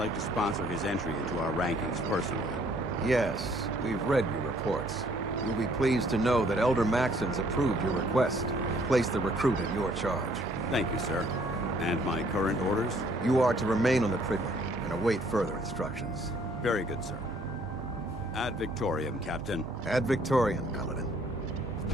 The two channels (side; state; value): both; normal; correlation 0.62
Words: to sponsor his entry into our rankings personally. Yes, we've read your reports. You'll be pleased to know that Elder Maxon's approved your request to place the recruit in your charge. Thank you, sir. And my current orders? You are to remain on the Prydwen and await further instructions. Very good, sir. Ad Victoriam, Captain. Ad Victoriam, Paladin.